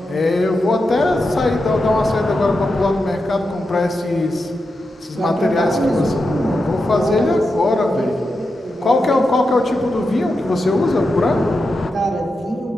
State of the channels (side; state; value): both; normal; correlation 0.88